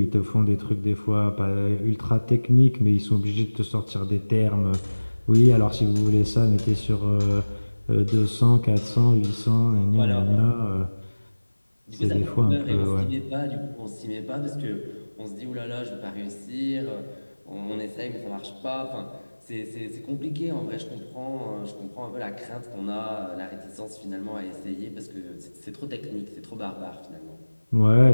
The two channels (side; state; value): both; inverted; correlation -1.00